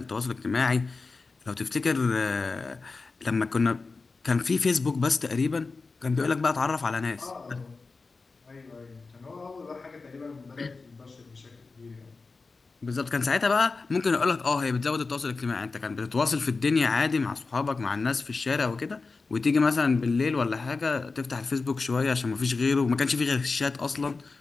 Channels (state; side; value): quieter; right; 4.1 dB